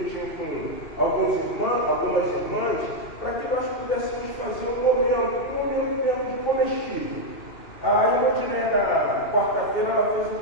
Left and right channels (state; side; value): late; right; 2.6 ms